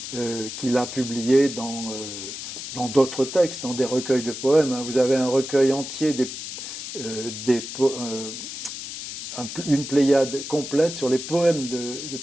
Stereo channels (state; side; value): noise; left; hiss, 8 dB below the sound